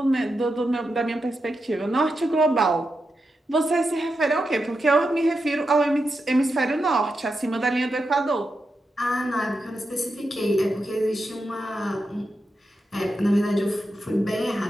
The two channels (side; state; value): both; normal; correlation 0.87